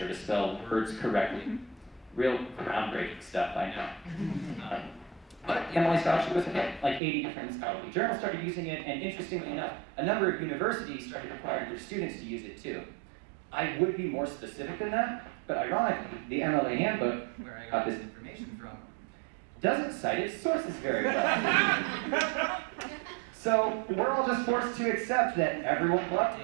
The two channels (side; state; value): left; drops out; at 7.0 s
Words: to spell words correctly. Real groundbreaking stuff, I know. But the MLA Style Sheet was a hit. Like 80 different scholarly journals started using it, and interestingly enough, a number of universities started requiring their students to use it too. I would be more specific than that, but ironically, the MLA handbook, where I got this information from, doesn't cite its sources very well. So we're all just forced to accept that everyone loved